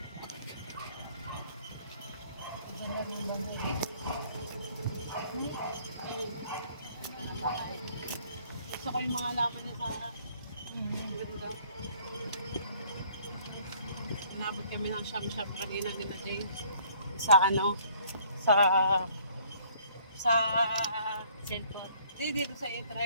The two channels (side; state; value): both; inverted; correlation -0.59